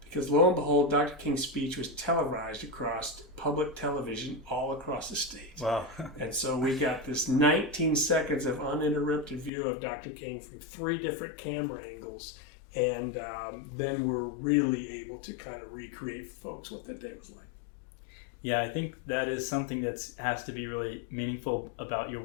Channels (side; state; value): right; drops out; at 9.5 s